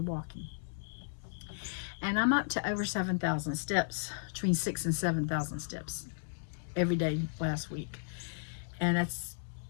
walking. And I'm up to over 7,000 steps, between 6,000 and 7,000 steps every day last week. And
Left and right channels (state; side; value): silent; right; digital silence